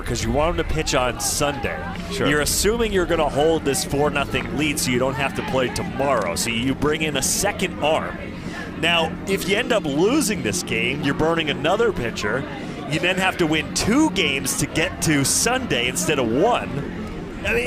because you want him to pitch on Sunday. Sure. You're assuming you're going to hold this 4-0 lead so you don't have to play tomorrow. So you bring in a second arm. Now, if you end up losing this game, you're burning another pitcher. You then have to win 2 games to get to Sunday instead of 1. I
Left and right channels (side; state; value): both; identical; correlation 1.00